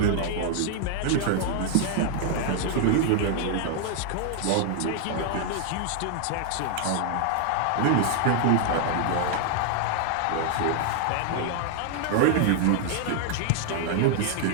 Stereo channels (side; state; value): both; different; correlation 0.00